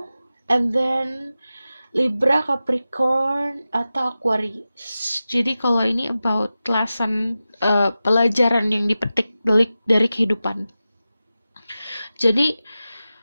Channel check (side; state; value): both; inverted; correlation -0.94